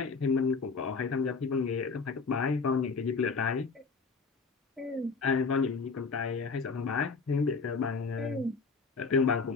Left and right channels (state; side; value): quieter; right; 4.7 dB